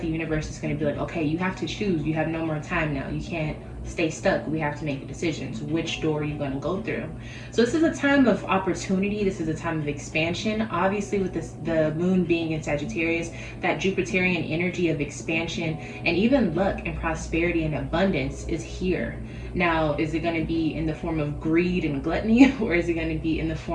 the universe is going to be like, okay, you have to choose. You have no more time now. You can't stay stuck. We have to make decisions. Which door are you going to go through? So this is a time of opportunity. This is a time of expansion. Obviously, with the moon being in Sagittarius, that Jupiterian energy of expansion and even luck and prosperity and abundance is here. Now, is it going to be in the form of greed and gluttony, or is it going to be in the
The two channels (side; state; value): both; identical; correlation 1.00